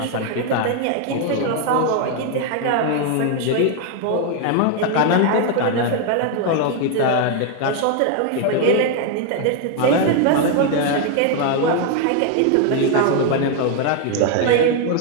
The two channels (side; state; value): both; different; correlation 0.01